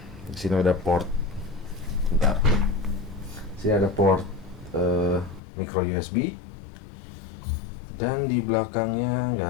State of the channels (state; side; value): drops out; right; at 5.4 s